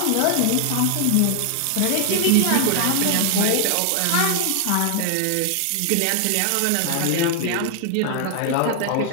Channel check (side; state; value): both; different; correlation 0.00